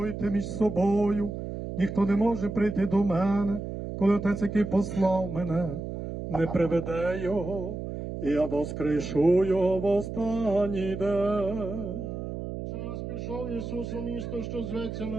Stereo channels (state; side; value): noise; right; hum, 6 dB below the sound